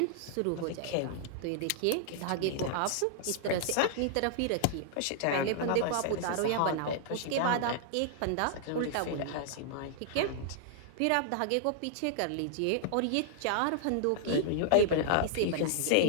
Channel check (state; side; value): different; both; correlation -0.01